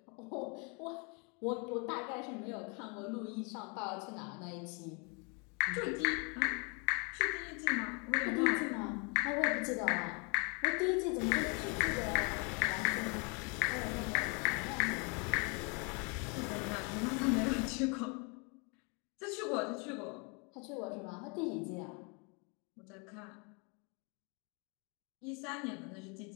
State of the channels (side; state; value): right; quieter; 33.7 dB